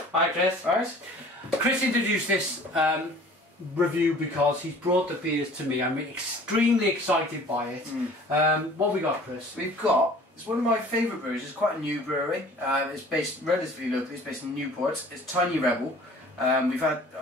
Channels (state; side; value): normal; both; correlation 0.48